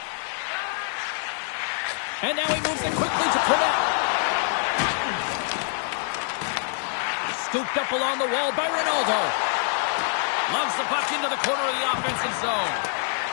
And now he moves it quickly to Pernette. Scooped up along the wall by Ronaldo. Loves the puck into the corner of the offensive zone.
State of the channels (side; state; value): right; silent; 61 dB below the other